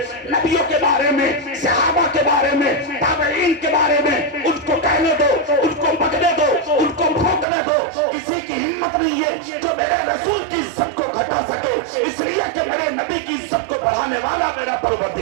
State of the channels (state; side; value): drops out; left; at 7.5 s